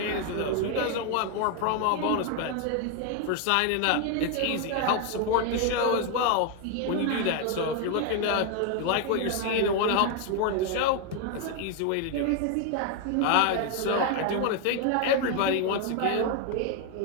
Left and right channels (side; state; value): both; different; correlation 0.01